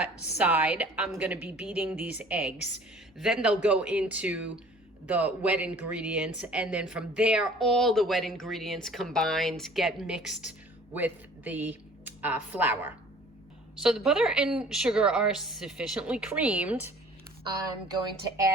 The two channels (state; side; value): normal; both; correlation 0.51